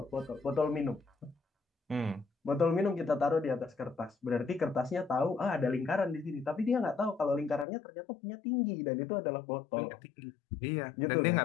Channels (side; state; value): right; drops out; at 7.7 s